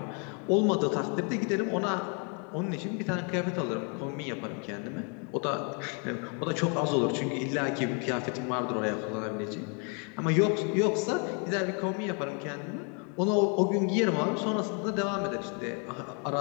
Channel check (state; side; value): quieter; right; 37.7 dB